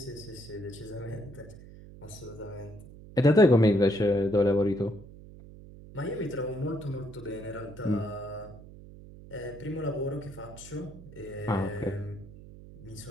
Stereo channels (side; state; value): right; noise; hum, 17 dB below the sound